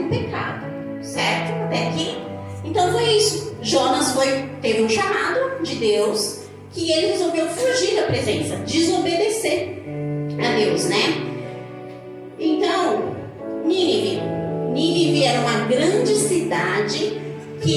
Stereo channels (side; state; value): both; identical; correlation 1.00